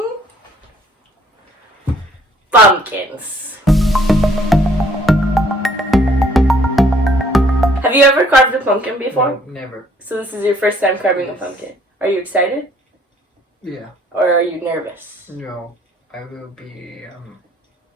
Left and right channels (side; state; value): both; normal; correlation 0.61